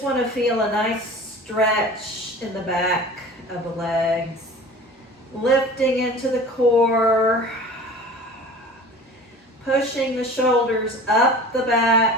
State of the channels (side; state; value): both; normal; correlation 0.40